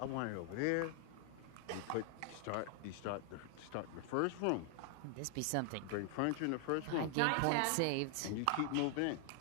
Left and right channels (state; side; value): different; both; correlation 0.00